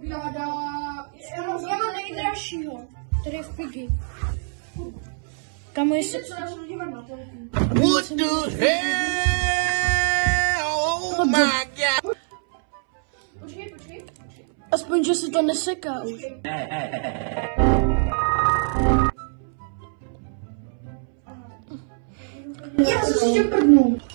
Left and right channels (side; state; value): left; silent; 63 dB below the other